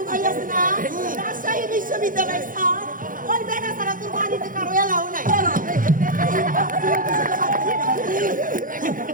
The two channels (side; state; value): left; late; 0.40 ms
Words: ভাই আছে না রাজশাহী বিশ্ববিদ্যালয়ের স্যার ওই বেড়া সারা তোর বাড়িতে কারো এলাও নাই